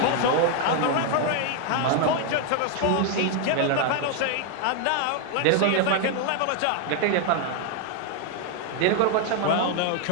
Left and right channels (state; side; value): different; both; correlation 0.01